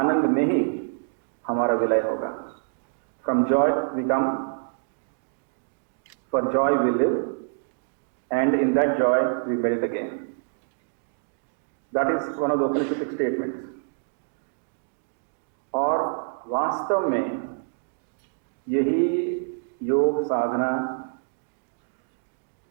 में ही हमारा विलय होगा। From joy we come, for joy we live, and in that joy we melt again. That is one of the Upanishadic statements. और वास्तव में यही योग साधना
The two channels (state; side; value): silent; left; digital silence